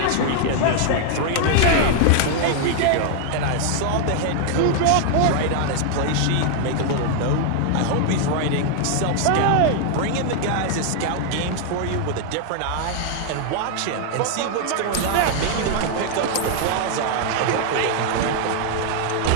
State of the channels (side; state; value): both; different; correlation 0.00